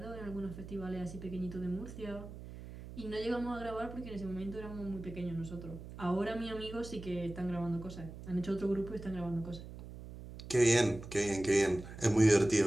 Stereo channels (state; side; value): noise; right; hum, 12 dB below the sound